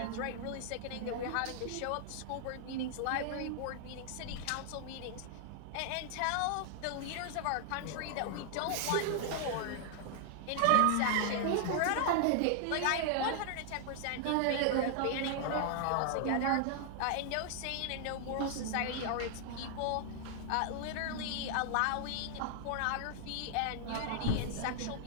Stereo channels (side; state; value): both; different; correlation 0.00